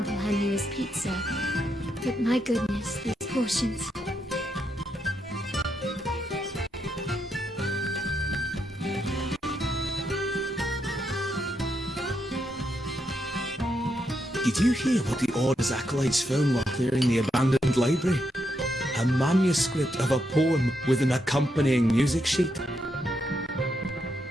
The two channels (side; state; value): both; normal; correlation 0.81